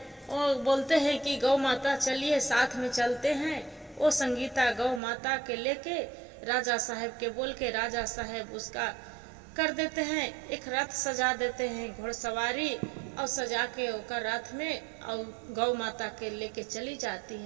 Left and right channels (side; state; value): left; drops out; at 5.0 s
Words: वो बोलते हैं कि गौ माता चलिए साथ में चलते हैं। वो संगीता गौ माता के लेके राजा साहब के बोल के, राजा साहब उसका कर देते हैं, एक रथ सजा देते हैं घोड़सवारी, और सजा के ओकर रथ में और गौ माता के लेके चली जाती